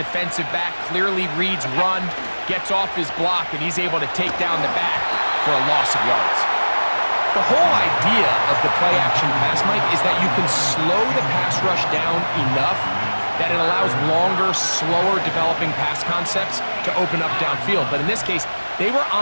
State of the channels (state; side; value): inverted; both; correlation -1.00